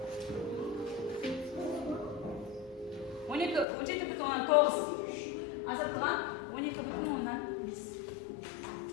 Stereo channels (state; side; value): drops out; right; at 3.7 s